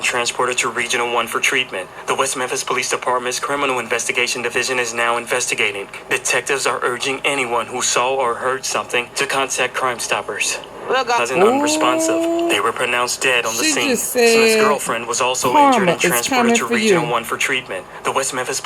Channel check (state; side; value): identical; both; correlation 1.00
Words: transported to Regional 1 for treatment. The West Memphis Police Department's Criminal Investigation Division is now investigating. Detectives are urging anyone who saw or heard something to contact Crime Stoppers. Cousin unresponsive. They were pronounced dead on the scene. Smith's girlfriend was also injured and transported to Regional 1 for treatment. The West Memphis